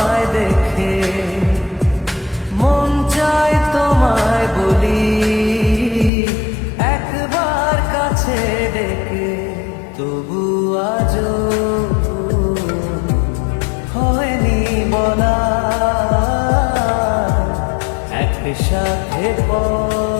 দেখে, মন চায় তোমায় বলি একবার কাছে ডেকে, তবু আজও হয়নি বলা একসাথে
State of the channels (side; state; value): right; drops out; at 6.1 s